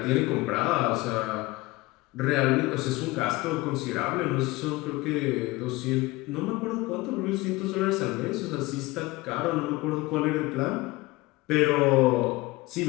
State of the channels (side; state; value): right; quieter; 21.0 dB